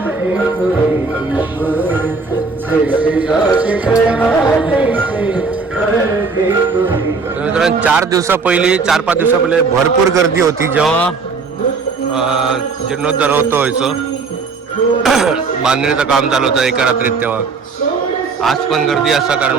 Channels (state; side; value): quieter; left; 4.5 dB